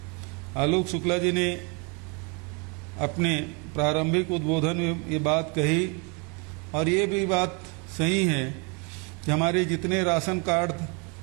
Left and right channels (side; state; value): left; quieter; 32.0 dB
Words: आलोक शुक्ला जी ने अपने प्रारंभिक उद्बोधन में ये बात कही, और ये भी बात सही है कि हमारे जितने राशन कार्ड